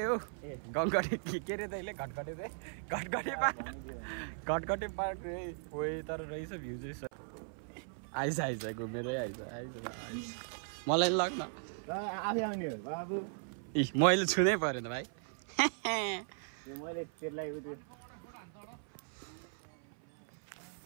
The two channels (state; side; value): silent; left; 53 dB below the other